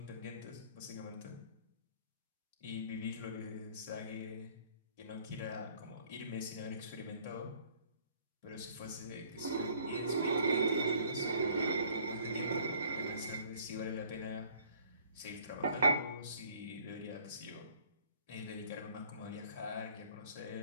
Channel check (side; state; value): both; inverted; correlation -0.57